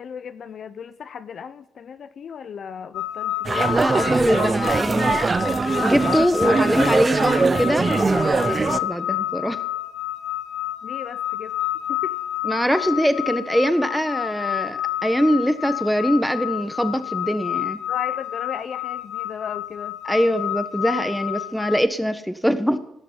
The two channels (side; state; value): both; normal; correlation 0.84